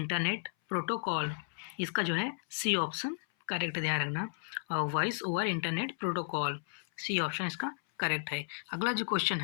protocol, इसका जो है सी ऑप्शन करेक्ट, ध्यान रखना voice over internet protocol, C option इसका करेक्ट है। अगला जो क्वेश्चन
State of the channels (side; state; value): right; silent; 55 dB below the other